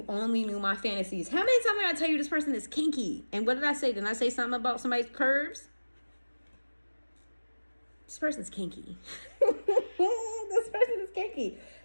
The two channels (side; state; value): both; inverted; correlation -1.00